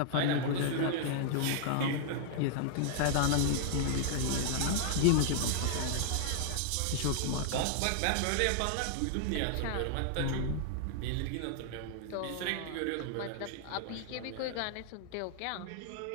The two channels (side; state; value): both; different; correlation -0.01